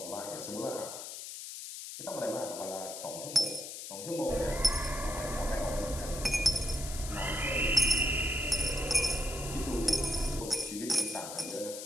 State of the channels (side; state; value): left; noise; hiss, 9 dB below the sound